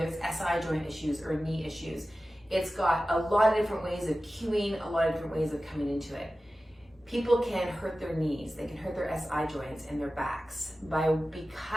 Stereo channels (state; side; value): normal; both; correlation 0.95